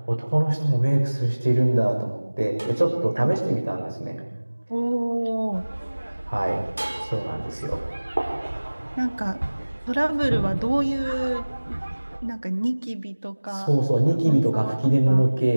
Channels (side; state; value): both; inverted; correlation -1.00